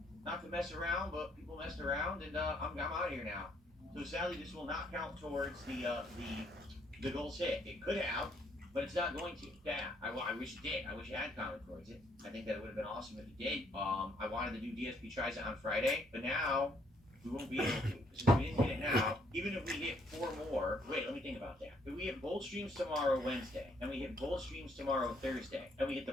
not to mess around, but people messed around, and I'm out of here now. So sadly, this will not count towards the goals hit. It could have, but it's not going to. Yeah, I wish it did. I wish it had counted towards it. I think that it would have been awesome if it did. I wanted to do DSP Tries It on Friday, but now we won't be able to. Since we didn't hit it now, even if we hit 4 more, wait, let me think about that. If we hit both streams tomorrow, Wednesday, and we hit both streams tomorrow, Thursday, and we hit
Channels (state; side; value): normal; both; correlation 0.69